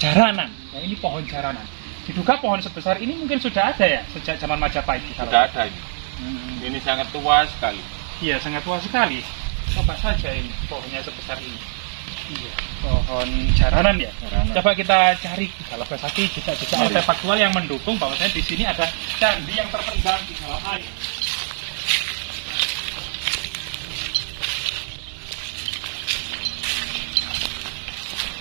Ya, ini pohon jaranan. Diduga pohon sebesar ini mungkin sudah ada ya sejak zaman Majapahit. Sudah ada ini. Ini sangat tua sekali. Iya, sangat tua sekali. Coba saja ini pohonnya sebesar ini. Iya, pohon jaranan ya. Coba kita cari Galogo Sakti jejak-jejak artefaktual yang mendukung bahwasanya di sini ada candi yang terpendam di dalam air.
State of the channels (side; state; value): left; silent; digital silence